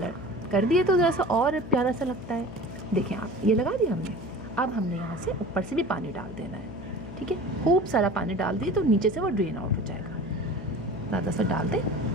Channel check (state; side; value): noise; left; hum, 13 dB below the sound